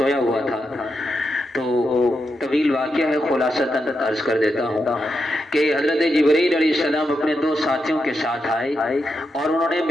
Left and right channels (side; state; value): both; normal; correlation 0.85